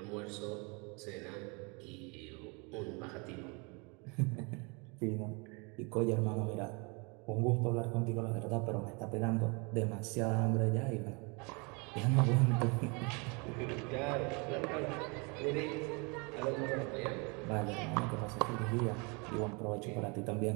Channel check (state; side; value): quieter; left; 30.8 dB